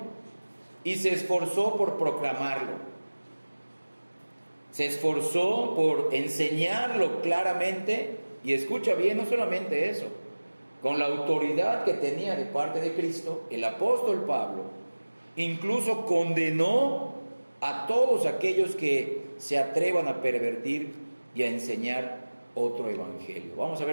y se esforzó por proclamarlo. Se esforzó por enseñarlo claramente, y escucha bien, no solamente eso, con la autoridad que tenía de parte de Cristo, el apóstol Pablo incluso condenó a todos aquellos que se atrevan a pervertir y a enseñar otro evangelio. Vamos a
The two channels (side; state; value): both; inverted; correlation -1.00